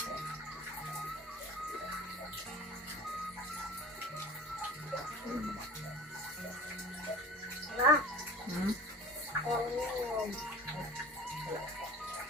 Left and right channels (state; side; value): normal; both; correlation 0.39